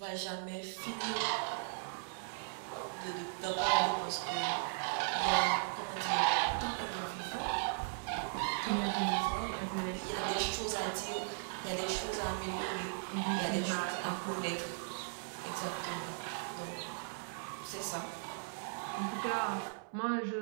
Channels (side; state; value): left; silent; 53 dB below the other